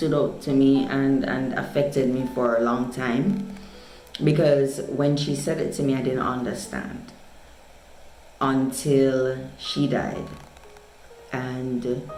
out to me and affected me for a long time, because when she said it to me, I didn't understand until she died. And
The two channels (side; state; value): both; identical; correlation 1.00